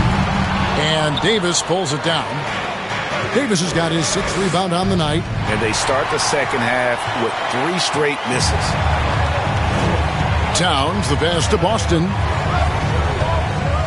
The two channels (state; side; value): identical; both; correlation 1.00